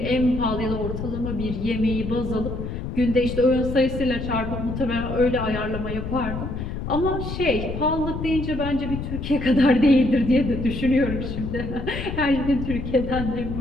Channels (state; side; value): noise; left; rumble, 6 dB below the sound